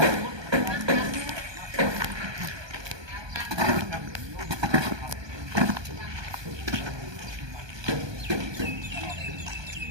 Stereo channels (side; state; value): left; late; 1.2 ms